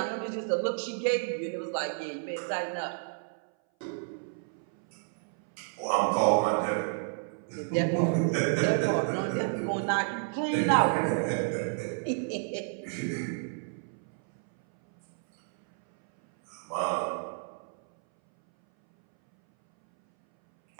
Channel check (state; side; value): silent; left; 57 dB below the other